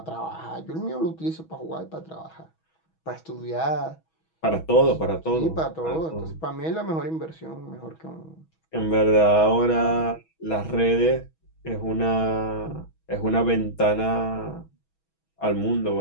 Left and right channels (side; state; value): right; late; 6.2 ms